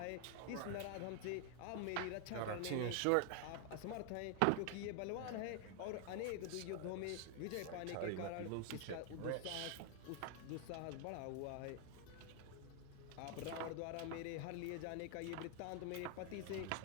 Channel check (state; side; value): different; both; correlation 0.00